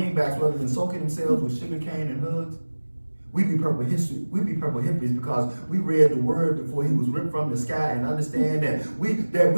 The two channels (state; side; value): inverted; both; correlation -1.00